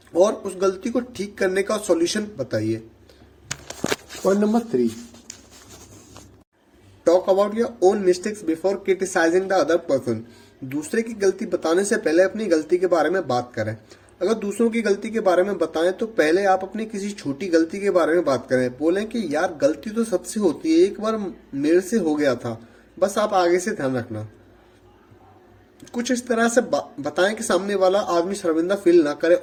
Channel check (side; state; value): both; identical; correlation 1.00